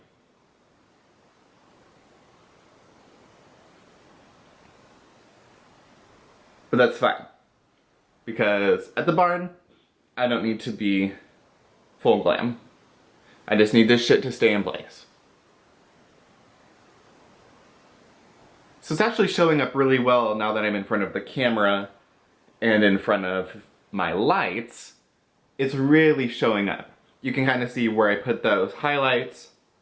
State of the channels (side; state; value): both; identical; correlation 1.00